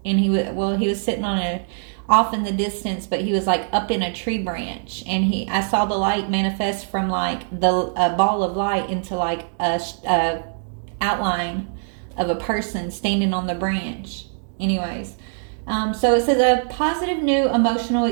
And he was sitting off in the distance, but he was like up in a tree branch, and I saw the light manifest from like a ball of light into like a outline of a person standing on the branch. Anyways, so it says a positive new emotional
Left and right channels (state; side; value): silent; left; digital silence